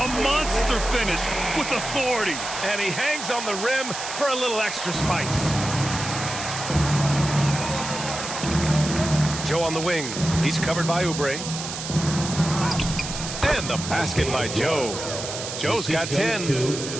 A monster finish with authority. And he hangs on the rim for a little extra spice. Joe on the wing. He's covered by Oubre. And the basket by Joe. Joe's got 10.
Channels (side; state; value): right; noise; hiss, 7 dB below the sound